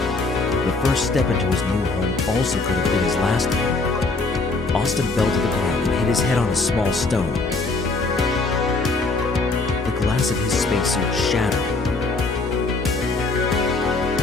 The first step into his new home also could have been his last one. Austin fell to the ground and hit his head on a small stone. The glass of his spacesuit shattered.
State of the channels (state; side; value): quieter; right; 3.5 dB